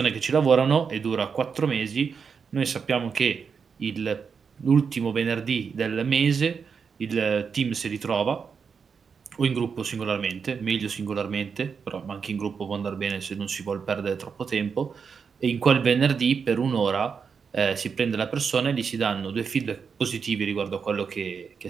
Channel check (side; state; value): left; quieter; 6.0 dB